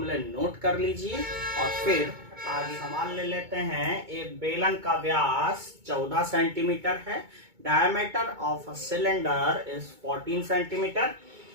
नोट कर लीजिए और फिर आगे सवाल ले लेते हैं। एक बेलन का व्यास 14 सेंटीमीटर है, diameter of a cylinder is 14 centimetre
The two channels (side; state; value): left; late; 2.2 ms